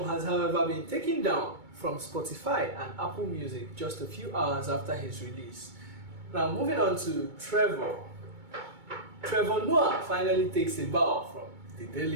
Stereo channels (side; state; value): left; late; 2.2 ms